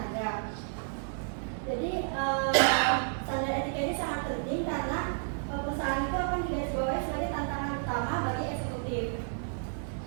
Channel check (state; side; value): silent; left; digital silence